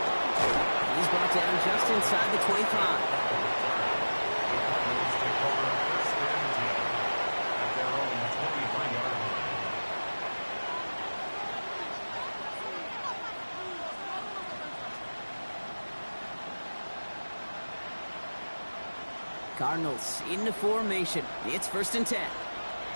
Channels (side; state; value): both; inverted; correlation -1.00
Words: He's brought down just inside the 25. Cardinals into formation. It's first and 10.